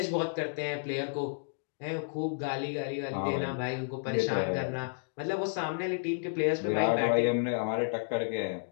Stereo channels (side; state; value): right; silent; digital silence